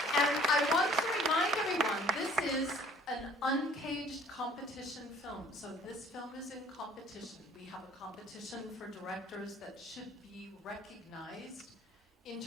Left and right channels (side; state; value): both; normal; correlation 0.53